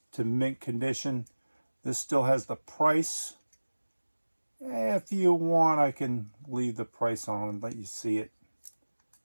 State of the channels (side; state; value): both; inverted; correlation -1.00